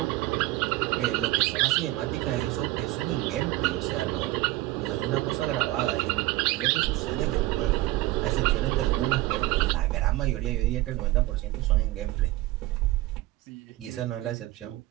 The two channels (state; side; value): quieter; left; 18.0 dB